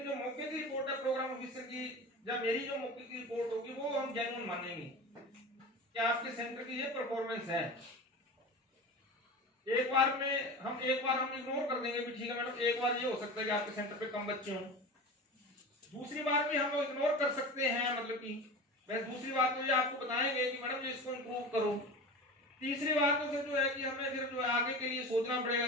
जो मौके की रिपोर्ट है प्रोग्राम ऑफिसर की, जब मेरी जो मौके की रिपोर्ट होगी वो हम जेन्युइन मानेंगे कि आपके सेंटर की ये परफॉर्मेंस है। एक बार हम इग्नोर कर देंगे भी ठीक है मैडम, एक बार ये हो सकता है कि आपके सेंटर पे कम बच्चे हों, दूसरी बार भी हम इग्नोर कर सकते हैं, मतलब कि बस दूसरी बात तो ये आपको बताएंगे कि मैडम इसको इम्प्रूव करो। तीसरी बात तो फिर जो है कि हमें फिर जो है आगे के लिए सोचना पड़ेगा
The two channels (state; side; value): normal; both; correlation 0.31